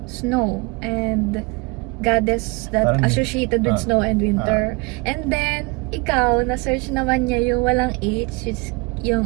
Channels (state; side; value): quieter; left; 28.0 dB